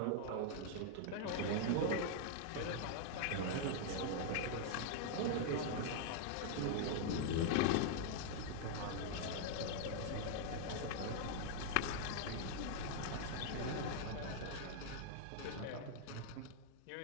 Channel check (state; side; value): different; both; correlation 0.00